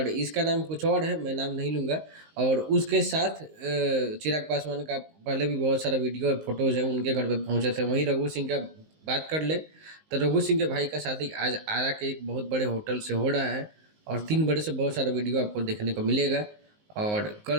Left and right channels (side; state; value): left; late; 19 ms